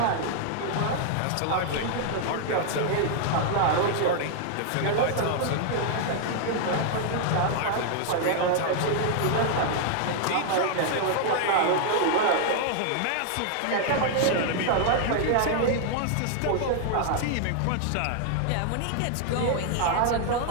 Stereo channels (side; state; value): both; different; correlation -0.01